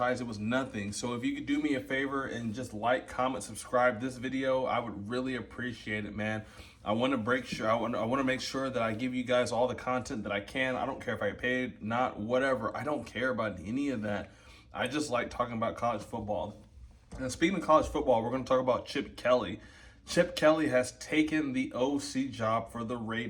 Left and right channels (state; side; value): identical; both; correlation 1.00